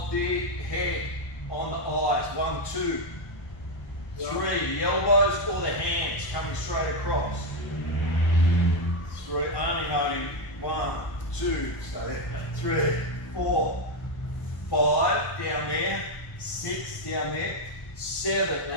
the head on the eyes. 1, 2, 3, the elbows or the hands coming straight across. 3, only noting 1, 2, stay there. 3, 4, 5 down there, 6 down there, 7,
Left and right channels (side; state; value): right; late; 1.1 ms